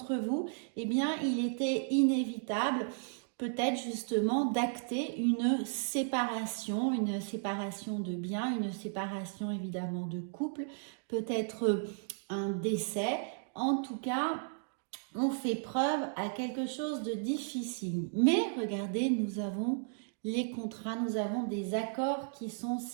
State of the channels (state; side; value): silent; left; digital silence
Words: vous, eh bien il était inévitable peut-être justement d'acter une séparation de biens, une séparation évidemment de couple, peut-être un décès. En tout cas, on fait preuve à quelque chose de difficile. Mais regardez, nous avons les contrats, nous avons des accords qui sont